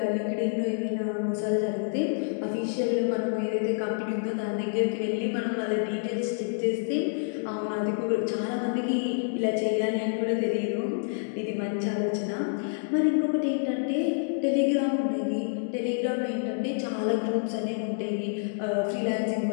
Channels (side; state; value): right; silent; digital silence